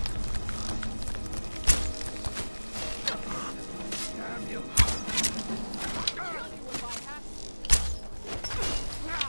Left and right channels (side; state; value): both; inverted; correlation -1.00